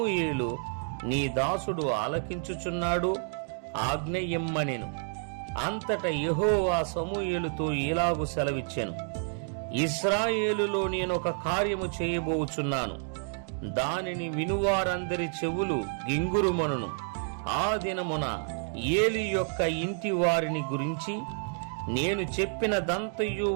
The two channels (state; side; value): silent; left; 58 dB below the other